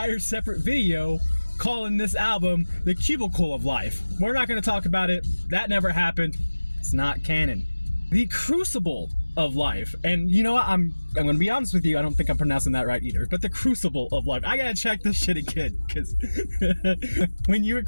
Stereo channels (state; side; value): inverted; both; correlation -1.00